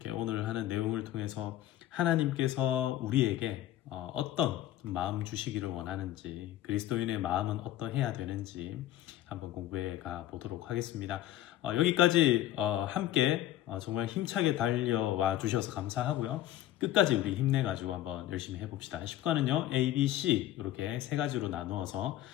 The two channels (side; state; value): right; quieter; 13.5 dB